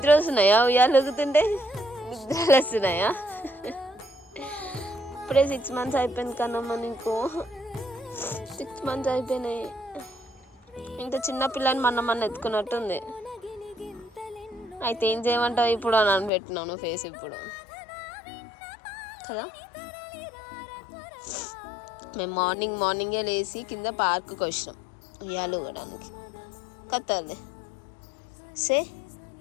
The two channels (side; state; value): right; drops out; at 16.3 s